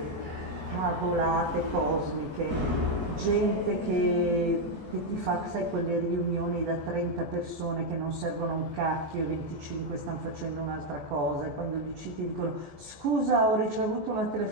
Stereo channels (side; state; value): left; late; 14 ms